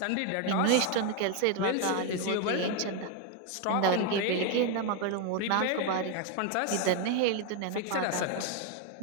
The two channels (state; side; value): different; both; correlation 0.01